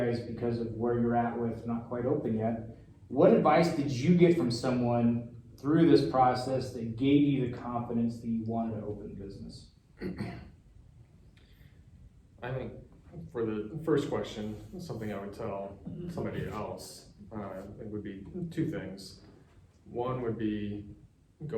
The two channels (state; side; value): identical; both; correlation 1.00